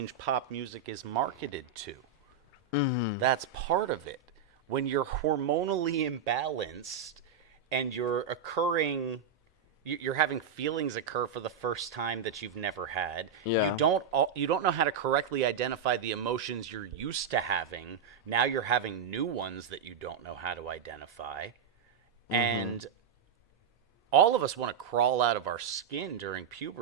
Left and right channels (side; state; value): left; quieter; 6.7 dB